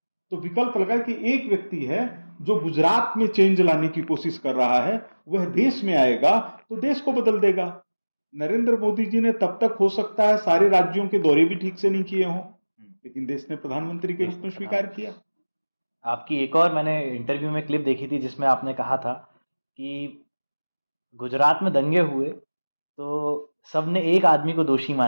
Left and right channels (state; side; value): inverted; both; correlation -1.00